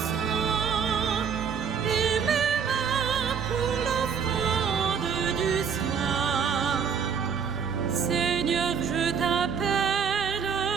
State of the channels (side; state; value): left; quieter; 6.7 dB